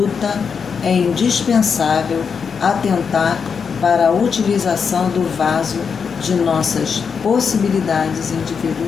é indispensável atentar para a utilização do vaso de nossas possibilidades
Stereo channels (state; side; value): quieter; right; 6.2 dB